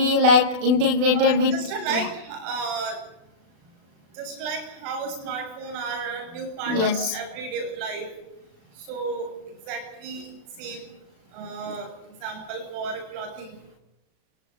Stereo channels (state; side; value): late; left; 36 ms